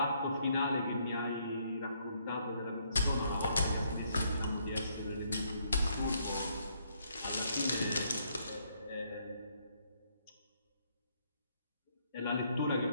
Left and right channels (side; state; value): both; inverted; correlation -0.71